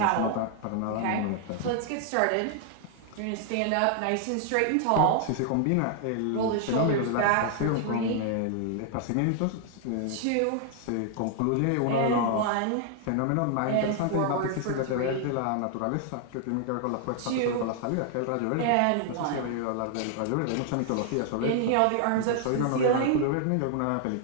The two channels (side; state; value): both; different; correlation 0.00